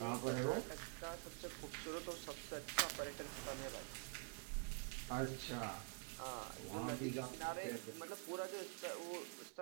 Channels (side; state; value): left; quieter; 33.4 dB